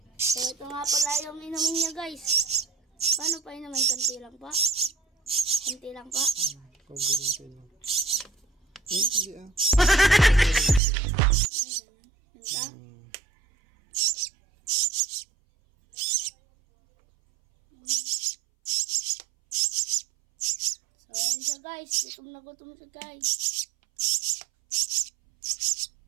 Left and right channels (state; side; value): drops out; left; at 10.8 s